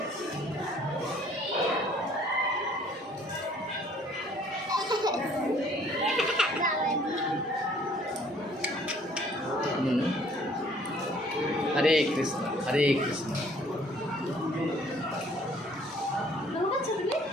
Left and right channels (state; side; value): normal; both; correlation 0.58